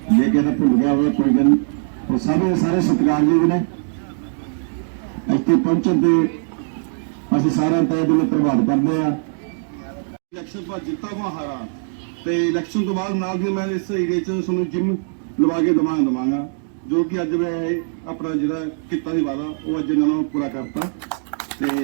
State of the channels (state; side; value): silent; left; digital silence